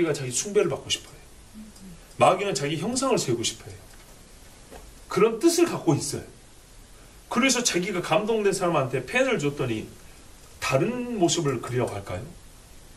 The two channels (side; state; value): both; identical; correlation 1.00